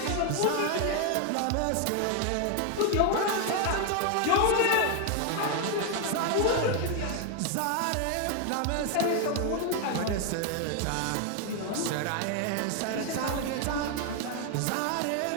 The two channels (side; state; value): both; different; correlation 0.01